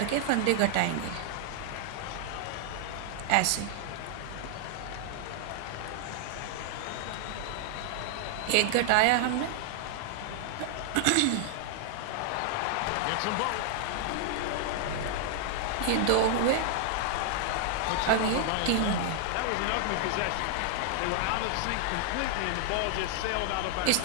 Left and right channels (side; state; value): both; different; correlation 0.00